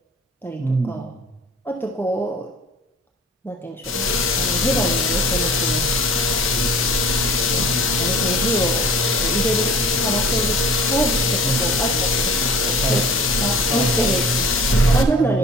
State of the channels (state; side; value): normal; both; correlation 0.45